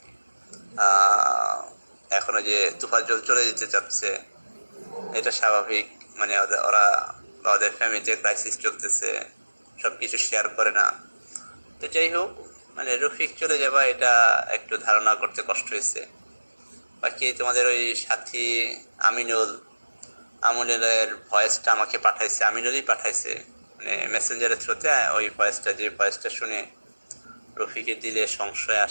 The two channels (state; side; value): inverted; both; correlation -1.00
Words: এখনো যে তুফাজ্জল চলে যেতে চাচ্ছে, এটা স্বাভাবিক। মানে ওরা বা ওদের ফ্যামিলিতে ক্রাইসিস চলতেছে, সব কিছু শেয়ার করে না। তো যাই হোক, মানে রফিক চলে যাবা এটা একটু ধারণা করতে কষ্ট হয়েছে। বাকি তোমাদের ওই সাথী আমিনুলের ভয়েসটা আমাকে পাঠাইছে, আমিনুলই পাঠাইছে, মানে মেসেঞ্জারের থ্রুতে ওই ভয়েসটা, যে ভয়েসটা শুনে রফিকের দিলে সংশয়